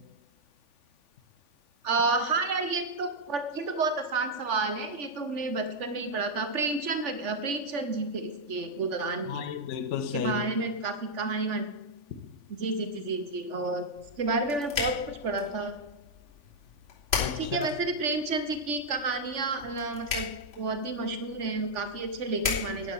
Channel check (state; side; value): late; left; 3.5 ms